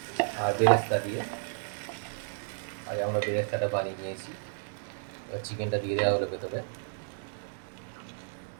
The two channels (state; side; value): silent; left; digital silence